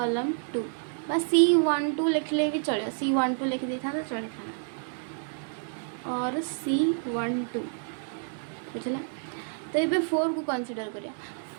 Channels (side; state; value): left; silent; 59 dB below the other